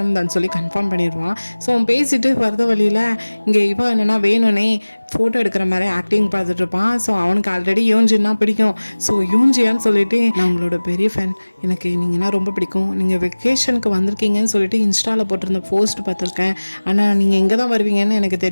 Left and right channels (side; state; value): both; inverted; correlation -1.00